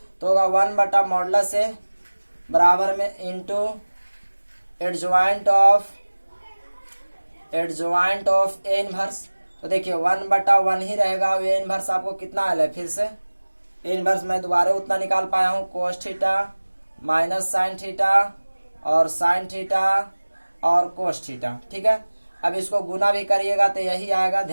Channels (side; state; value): both; inverted; correlation -1.00